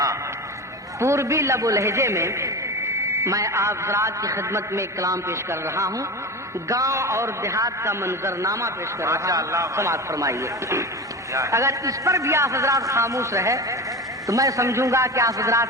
پوربی لب و لہجے میں میں آپ حضرات کی خدمت میں کلام پیش کر رہا ہوں، گاؤں اور دیہات کا منظرنامہ پیش کر رہا ہوں، سماعت فرمائیے۔ اگر اس پر بھی آپ حضرات خاموش رہے تو میں سمجھوں گا کہ آپ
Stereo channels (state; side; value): normal; both; correlation 0.27